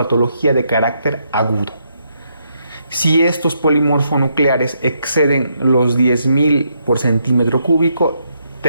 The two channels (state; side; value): inverted; both; correlation -0.77